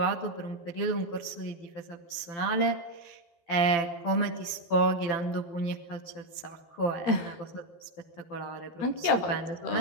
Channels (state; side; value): late; right; 12 ms